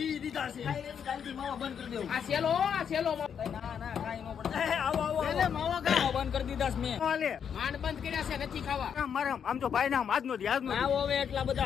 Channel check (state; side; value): quieter; right; 7.7 dB